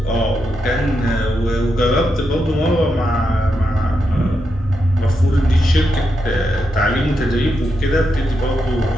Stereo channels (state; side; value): normal; both; correlation 0.84